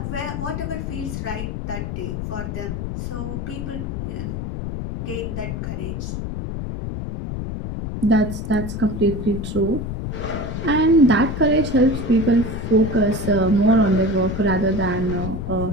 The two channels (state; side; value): noise; left; rumble, 5 dB below the sound